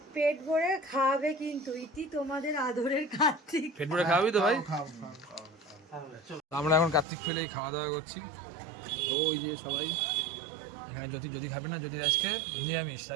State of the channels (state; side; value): drops out; left; at 7.1 s